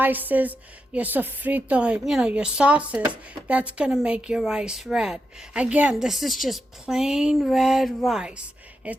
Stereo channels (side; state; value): both; normal; correlation 0.87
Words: your sofrito, your sauces. That's going to make your rice red. Again, this is just plain red rice.